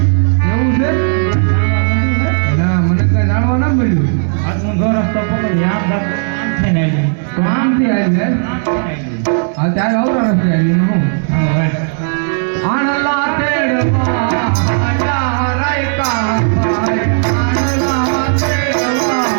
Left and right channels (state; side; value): silent; left; 56 dB below the other